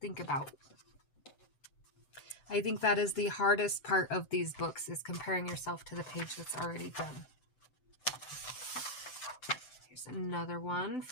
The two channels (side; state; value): right; late; 7.8 ms